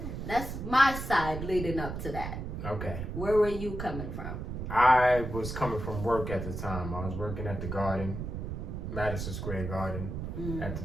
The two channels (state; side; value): noise; right; rumble, 5 dB below the sound